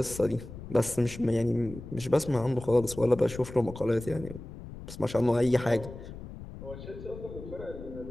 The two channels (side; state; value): left; noise; rumble, 13 dB below the sound